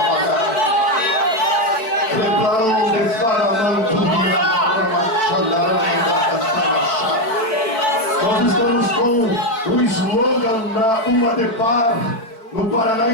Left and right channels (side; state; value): right; late; 4.5 ms